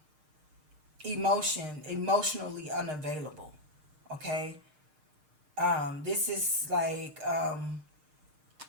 emotionally unavailable. Okay. This is like,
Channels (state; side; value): late; left; 6.5 ms